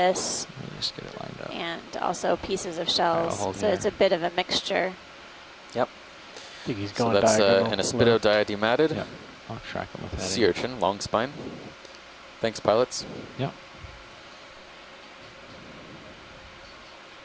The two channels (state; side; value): identical; both; correlation 1.00